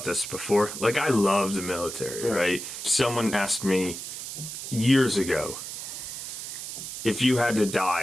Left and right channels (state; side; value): noise; right; hiss, 8 dB below the sound